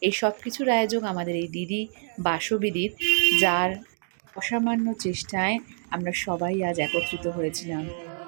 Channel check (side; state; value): left; silent; digital silence